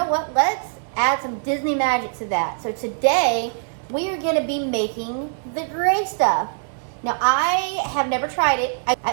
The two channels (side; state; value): left; silent; digital silence